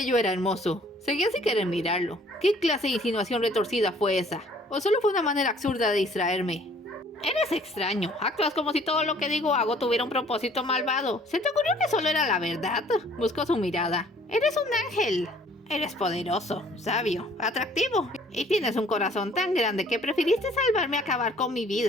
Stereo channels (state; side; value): normal; both; correlation 0.57